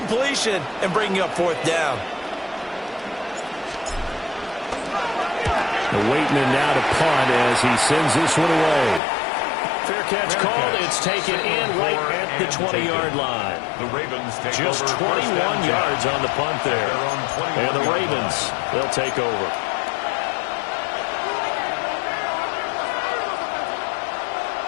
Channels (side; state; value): right; drops out; at 9.0 s